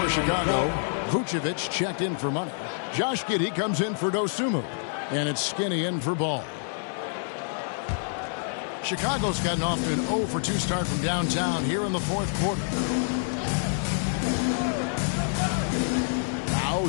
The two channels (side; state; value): right; silent; digital silence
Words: Chicago. Vucevic checked in for Money. Josh Giddey comes in for Dosunmu. And it's Skinny in for Ball. Chicago's gotten off to an 0 for 2 start from downtown here in the 4th quarter. Now